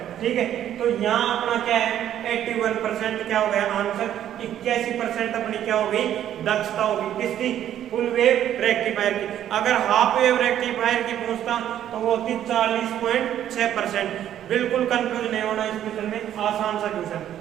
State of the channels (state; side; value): quieter; left; 11.0 dB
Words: ठीक है, तो यहाँ अपना क्या है 81% क्या हो गया आंसर। 81% अपनी क्या हो गई दक्षता होगी किसकी फुल वेव रेक्टिफायर की। अगर हाफ वेव रेक्टिफायर की पूछता तो वो होती 40.6%। बिल्कुल कंफ्यूज नहीं होना इस क्वेश्चन में, आसान सा क्वेश्चन।